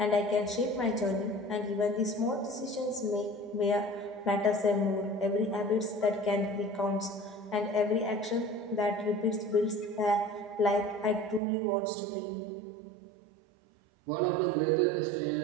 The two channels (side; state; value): left; drops out; at 11.4 s